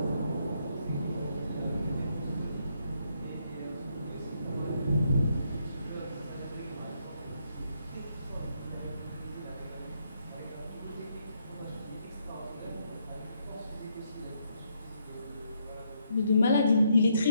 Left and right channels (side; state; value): both; inverted; correlation -0.75